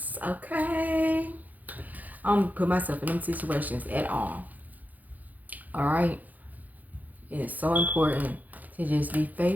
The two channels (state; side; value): late; left; 0.081 ms